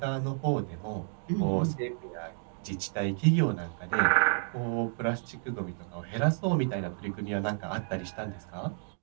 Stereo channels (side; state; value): left; silent; 57 dB below the other